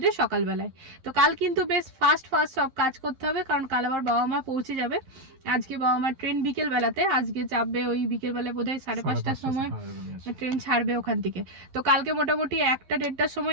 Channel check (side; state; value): left; late; 11 ms